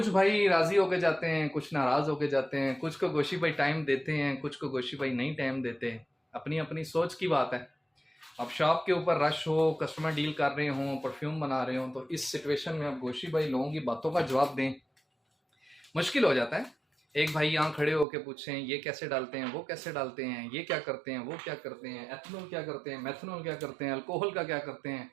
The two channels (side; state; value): left; drops out; at 18.1 s